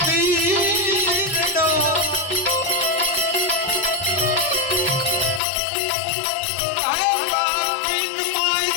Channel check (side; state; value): right; drops out; at 5.4 s